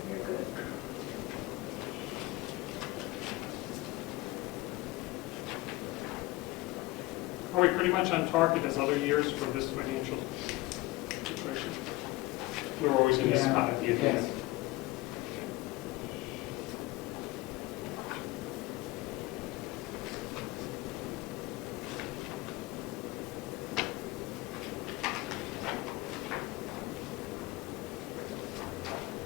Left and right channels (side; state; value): right; quieter; 20.2 dB